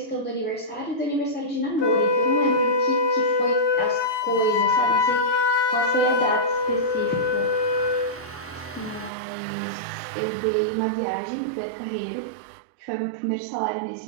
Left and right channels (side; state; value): left; drops out; at 9.1 s